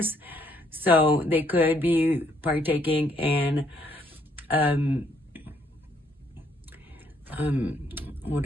So they could be partaking in what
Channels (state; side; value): normal; both; correlation 0.69